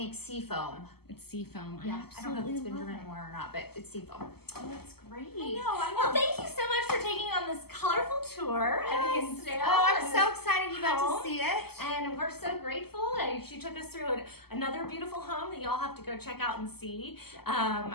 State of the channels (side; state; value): right; late; 0.96 ms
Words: seafoam. It's seafoam. Yeah, I don't know if it's been love driven it. anymore or not, but it's seafoam. Oh, that's great. I know. Well, thank you so much for taking on this colorful tour at Hinsdale. Oh, I'm and so this excited you got home. to see it. And we're so grateful. She took us through another beautiful home that y'all have to go check out and see